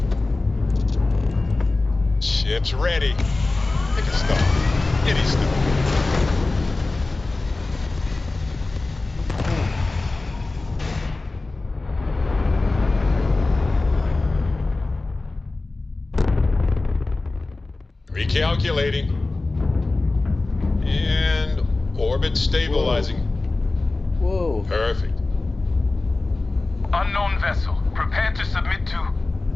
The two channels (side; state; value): right; quieter; 3.3 dB